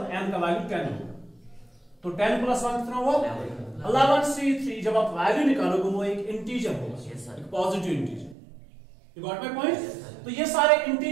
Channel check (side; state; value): left; drops out; at 8.3 s